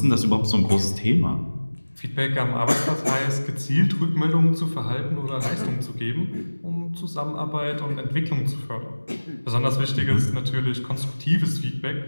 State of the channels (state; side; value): inverted; both; correlation -1.00